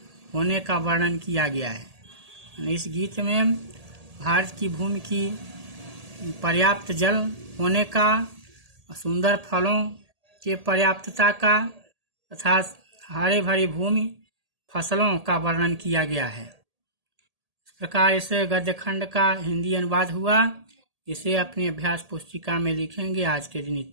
होने का वर्णन किया गया है। इस गीत में भारत की भूमि की पर्याप्त जल होने का, सुंदर फलों के पर्याप्तता का तथा हरे भरी भूमि फसलों का वर्णन किया गया है। इस प्रकार इस गद्य खंड का हिंदी अनुवाद हुआ। इसे अपनी अभ्यास पुस्तिका में लिखेंगे। आज के दिन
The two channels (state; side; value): late; left; 1.8 ms